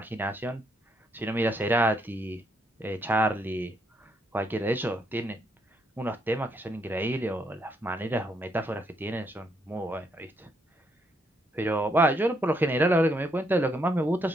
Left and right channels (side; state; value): both; normal; correlation 0.74